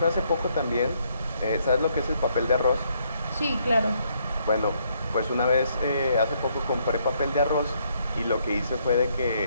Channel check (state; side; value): inverted; both; correlation -0.71